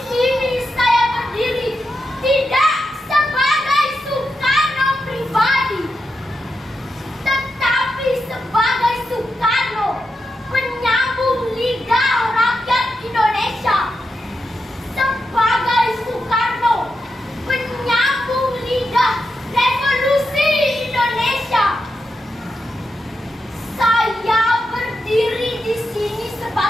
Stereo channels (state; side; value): normal; both; correlation 0.86